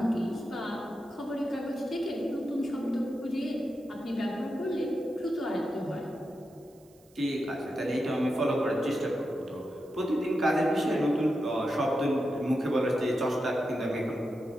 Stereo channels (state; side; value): noise; right; hiss, 30 dB below the sound